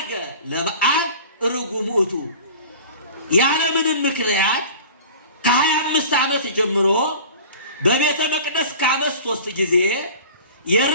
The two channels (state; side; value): inverted; both; correlation -0.40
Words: ለበዓል ርጉም ውእቱ። ያለምንም ምክንያት ከ25 ዓመት ጀምሮ በቤተ መቅደስ ከዓመት 3 ጊዜ